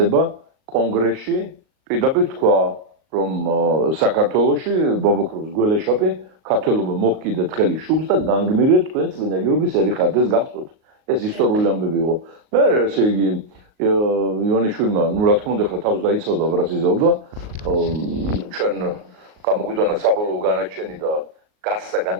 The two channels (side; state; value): left; late; 38 ms